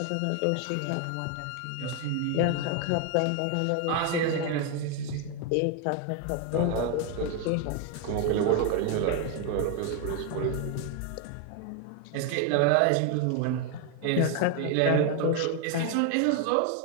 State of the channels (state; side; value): different; both; correlation 0.01